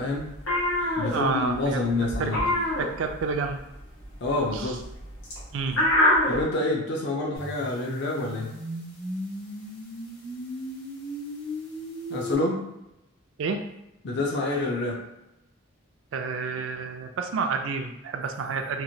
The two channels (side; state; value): both; normal; correlation 0.23